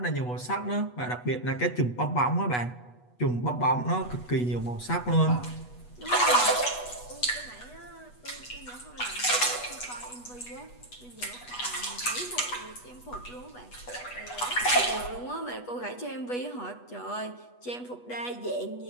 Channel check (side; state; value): right; late; 8.2 ms